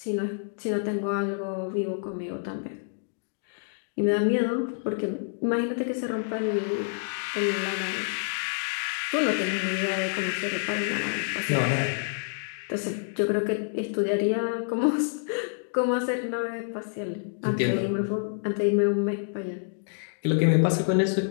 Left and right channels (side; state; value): right; silent; digital silence